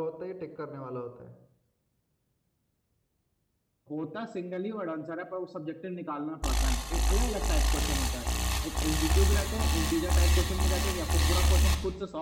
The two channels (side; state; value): both; identical; correlation 1.00